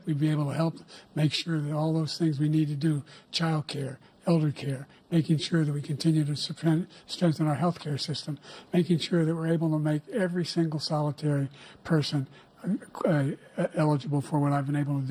We'd be able to help make sure that all those things we need to do, child care, elder care, making sure that we continue to strengthen our health care system, making sure that we're able to make every single solitary person eligible for what I've been able to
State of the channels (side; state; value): both; identical; correlation 1.00